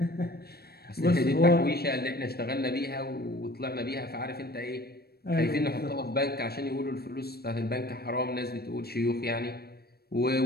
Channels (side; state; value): right; late; 0.46 ms